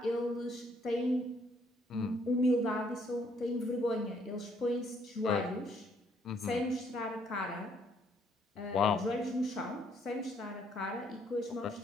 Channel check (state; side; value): normal; both; correlation 0.68